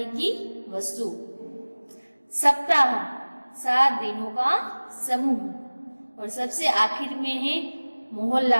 की वस्तु। सप्ताह 7 दिनों का समूह। और सबसे आखिर में है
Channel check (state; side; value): inverted; both; correlation -1.00